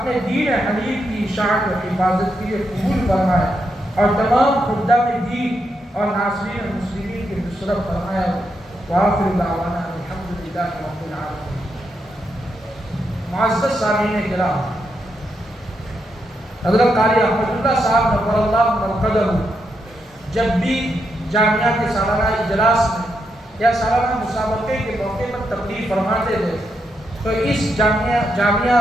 دین حنیف کی اشاعت و حفاظت کے لیے قبول فرمائے اور تمام خدام دین اور ناصرین المسلمین کی نصرت فرمائے۔ وآخر دعوانا الحمدللہ رب العالمین۔ معزز سامعین کرام، حضرت قاری احمد اللہ صاحب نور اللہ مرقدہ جب بھی جامعہ کے سالانہ اجلاس میں یا سالانہ مسابقے کے موقع پر تقریر فرماتے تھے تو اس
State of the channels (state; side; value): normal; both; correlation 0.82